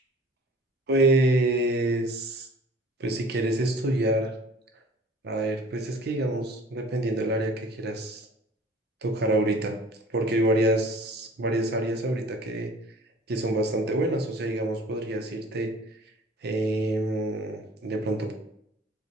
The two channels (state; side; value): normal; both; correlation 0.48